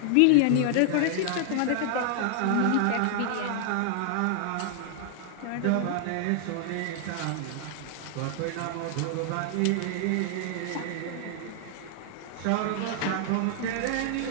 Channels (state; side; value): different; both; correlation 0.00